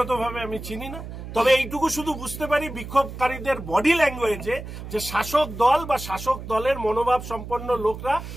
আমি চিনি না, তবে এইটুকু শুধু বুঝতে পারি বিক্ষোভকারীদের বডি ল্যাঙ্গুয়েজে যে শাসক দল বা শাসক দলের মনোভাব সম্পন্ন লোকরা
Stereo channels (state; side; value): noise; right; hum, 10 dB below the sound